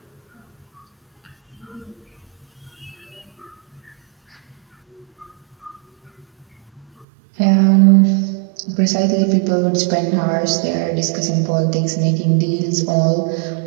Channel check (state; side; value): drops out; left; at 7.1 s